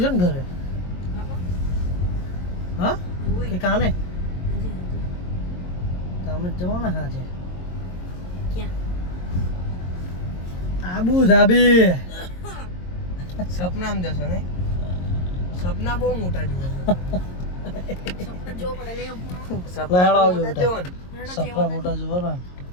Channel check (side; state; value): right; late; 22 ms